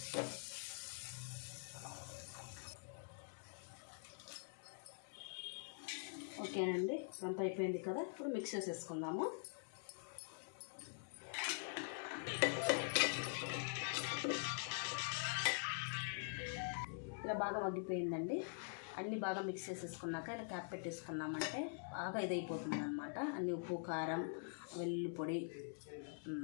ఓకేనండి, అంతా అయిపోయింది కదా. ఇప్పుడు మిక్స్ చేసేసుకుందాము. ఇలా బాగా మగ్గిపోయిందండి. అన్నీ బాగా మిక్స్ చేసేసుకున్నాక ఇలా క్యాప్ పెట్టేసుకున్నామంటే బాగా ఇదైపోతుంది అనమాట. అన్ని ఉప్పు, కారం, వెల్లుల్లి పొడి,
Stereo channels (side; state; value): right; silent; digital silence